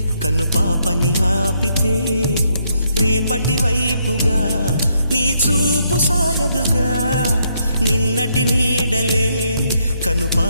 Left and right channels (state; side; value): inverted; both; correlation -0.75